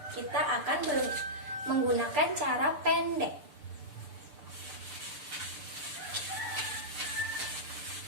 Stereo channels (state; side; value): late; left; 6.8 ms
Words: kita akan menggunakan cara pendek.